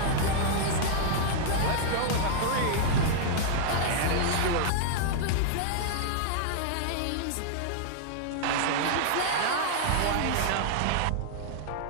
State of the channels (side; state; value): both; different; correlation -0.01